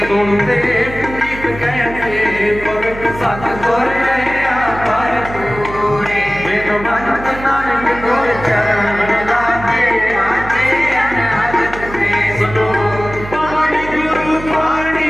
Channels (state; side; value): noise; right; hum, 12 dB below the sound